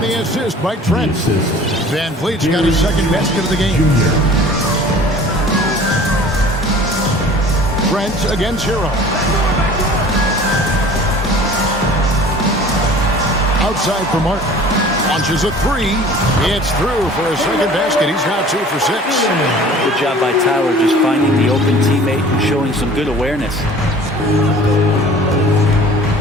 the assist by Trent. Van Vliet's got his second basket of the game. Trent against Hero. Outside for Martin. Launches a three. It's through for a second basket. He's now 2 for 6. Good job by Tyler just finding the open teammate and showing some good awareness.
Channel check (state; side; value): normal; both; correlation 0.46